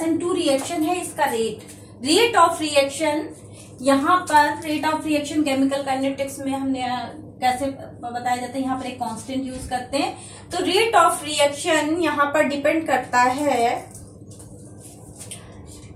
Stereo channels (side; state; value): both; identical; correlation 1.00